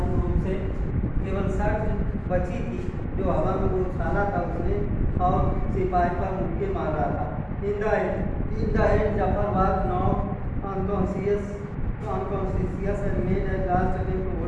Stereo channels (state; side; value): identical; both; correlation 1.00